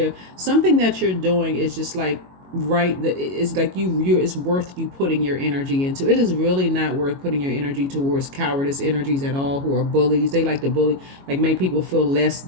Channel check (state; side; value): late; left; 22 ms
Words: something that you're doing is just like, right, it's like it's worth you putting your energy into. It is really not worth putting your energy towards cowardice energies at all, who are bullies. They like to bully, like make people feel less